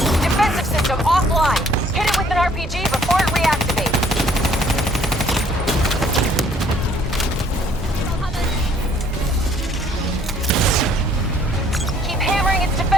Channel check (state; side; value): normal; both; correlation 0.61